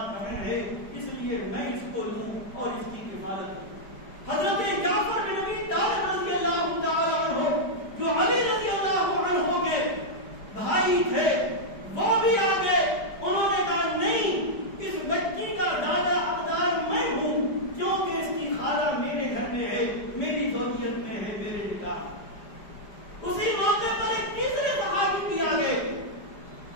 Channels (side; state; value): right; late; 4.9 ms